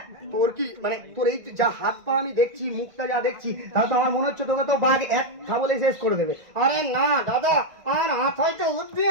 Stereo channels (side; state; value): left; late; 2.0 ms